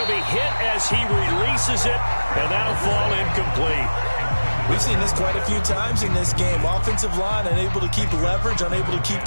be hit as he releases it, and that'll fall incomplete. We've seen this quite a few times in this game. Offensive line unable to keep leverage, unable to keep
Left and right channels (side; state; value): both; inverted; correlation -1.00